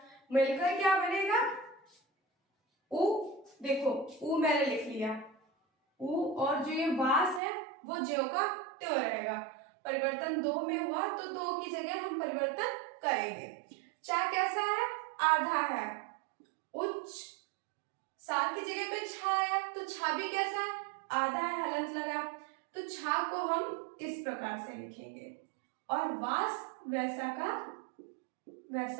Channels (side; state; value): left; drops out; at 7.4 s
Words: मिलकर क्या बनेगा, उ, देखो उ मैंने लिख लिया, उ, और जो ये वास है वो ज्यों का त्यों रहेगा। परिवर्तन दो में हुआ तो दो की जगह हम परिवर्तन करेंगे। चा कैसा है, आधा है, उच्च, सा की जगह पे छा है, तो छा भी कैसा है, आधा है, हलंत लगा, तो छा को हम इस प्रकार से लिखेंगे, और वास वैसा का